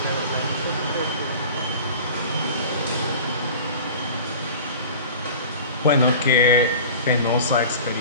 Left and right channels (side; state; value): both; inverted; correlation -0.39